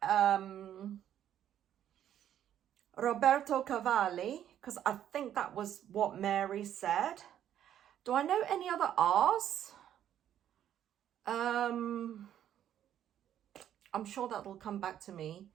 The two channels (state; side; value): quieter; left; 10.6 dB